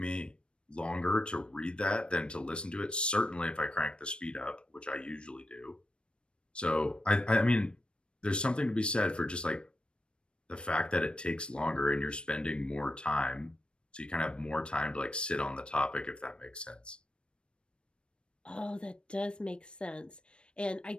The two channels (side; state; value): right; late; 0.056 ms